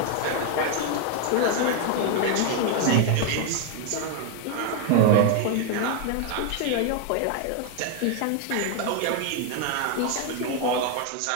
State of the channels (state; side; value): different; both; correlation 0.01